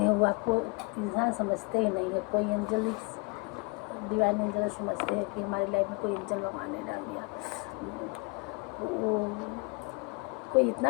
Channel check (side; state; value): right; quieter; 31.0 dB